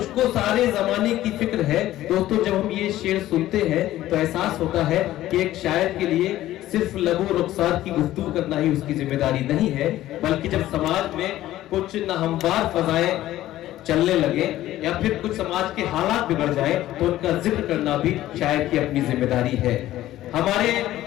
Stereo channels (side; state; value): right; quieter; 14.5 dB